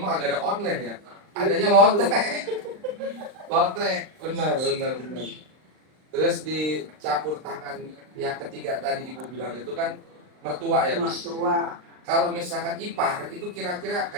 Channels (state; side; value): late; left; 39 ms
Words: agak ada online ya. Adanya lotre. Lotre, benar. Terus dicampur tangan yang ketiga tadi Ibu bilang itu kan mertua ya Bu. Mertua. Kalau misalkan ipar itu kira-kira